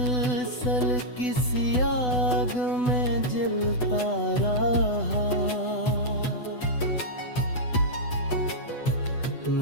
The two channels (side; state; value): right; late; 8.0 ms